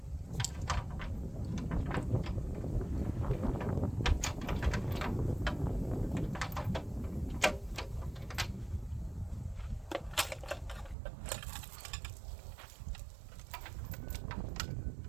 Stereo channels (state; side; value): drops out; left; at 11.0 s